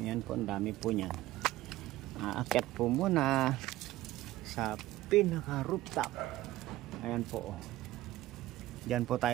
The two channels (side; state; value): left; quieter; 16.5 dB